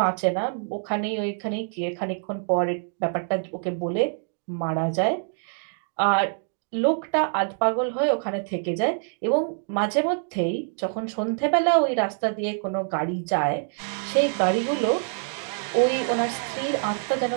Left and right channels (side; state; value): left; silent; 61 dB below the other